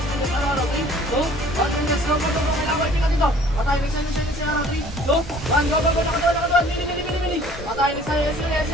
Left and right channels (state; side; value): normal; both; correlation 0.52